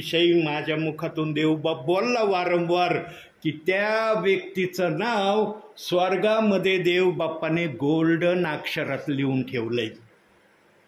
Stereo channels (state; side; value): identical; both; correlation 1.00